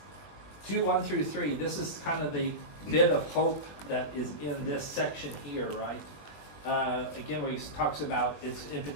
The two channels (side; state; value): right; late; 21 ms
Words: 2:1-3, this is kind of the bit of hope that is in this section here, right? Again, where he talks about, it's in